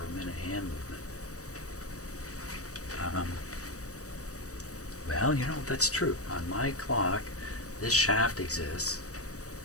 hand movement. Well, you know, that's true. On my clock, this shaft exists,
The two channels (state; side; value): late; right; 0.66 ms